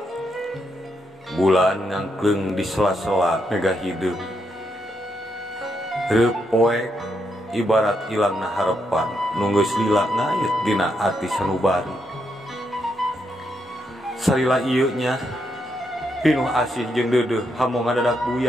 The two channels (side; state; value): both; normal; correlation 0.80